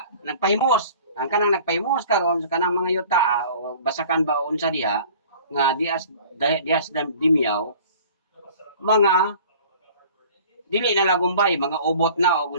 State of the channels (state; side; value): inverted; both; correlation -0.47